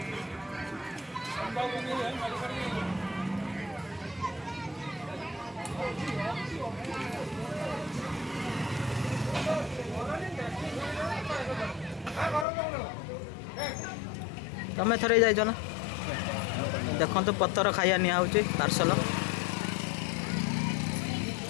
तमें थरे जाइज ना देखो तो पत्थर खाइया निआउची पार्सल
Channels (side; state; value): right; drops out; at 12.5 s